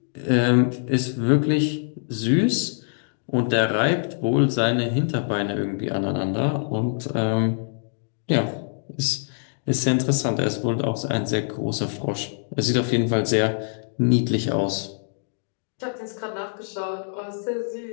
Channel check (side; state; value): right; silent; digital silence